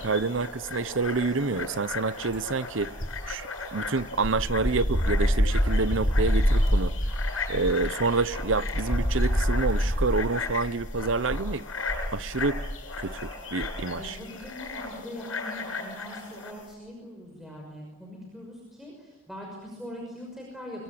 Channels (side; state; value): both; normal; correlation 0.41